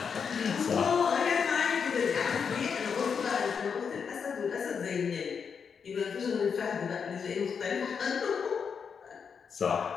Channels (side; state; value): right; quieter; 6.4 dB